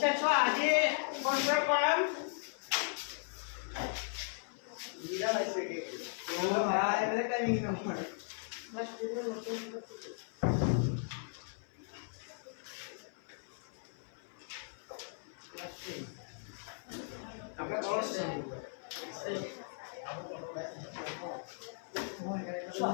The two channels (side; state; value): right; silent; 53 dB below the other